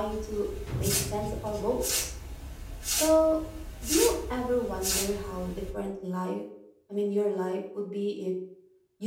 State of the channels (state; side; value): identical; both; correlation 1.00